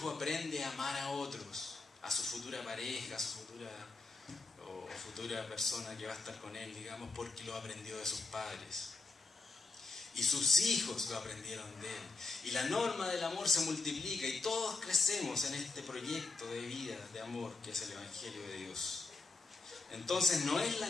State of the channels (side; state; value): right; quieter; 3.9 dB